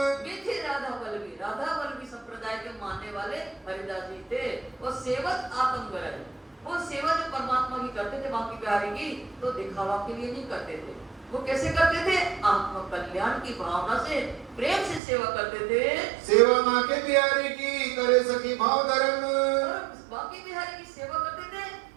बेटे राधा वल्लभी संप्रदाय के मानने वाले हरिदास जी थे। वो सेवत आत्मगर, वो सेवा जो परमात्मा की करते थे बांके बिहारी की, तो दिखावा के लिए नहीं करते थे। वो कैसे करते थे? आत्म कल्याण की भावना से प्रेम से सेवा करते थे। सेवा बांके बिहारी की करे सखी भाव धर्म, बांके बिहारी की सेवा करते थे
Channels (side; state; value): left; drops out; at 15.0 s